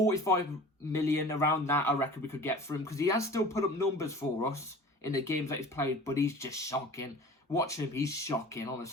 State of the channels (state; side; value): normal; both; correlation 0.41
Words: million, around that, I reckon we could get for him because he has still put up numbers for us in the games that he's played, but he's just shocking. Watch him, he's shocking,